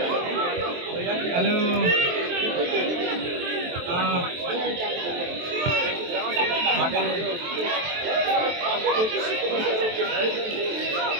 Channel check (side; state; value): left; late; 23 ms